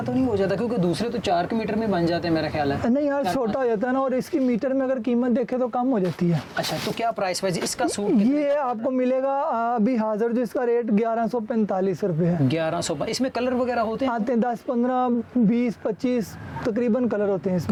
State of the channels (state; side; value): identical; both; correlation 1.00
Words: तो नहीं हो जाता? क्योंकि दूसरे तो 4 मीटर में बन जाते हैं मेरा ख्याल है। नहीं यार, छोटा हो जाता है ना, और इसकी मीटर में अगर कीमत देखे तो कम हो जाती है। अच्छा, तो क्या प्राइस वाइज इसका सूट? ये आपको मिलेगा अभी हाजिर जो इसका रेट 1145 रुपये है। 1100। इसमें कलर वगैरह होते हैं? आते हैं 10, 15, 20, 25 तकरीबन कलर होते हैं